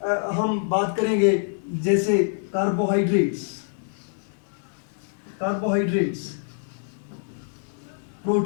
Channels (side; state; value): right; silent; digital silence